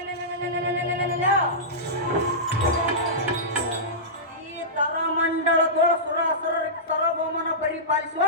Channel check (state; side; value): normal; both; correlation -0.16